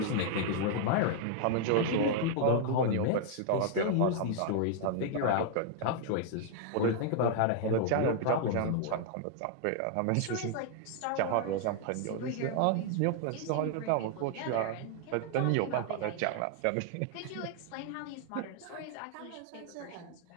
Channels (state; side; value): different; both; correlation 0.00